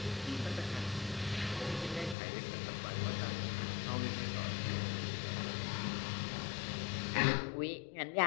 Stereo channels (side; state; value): right; drops out; at 2.1 s